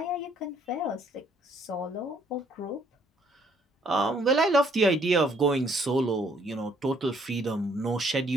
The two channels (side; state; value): both; normal; correlation 0.65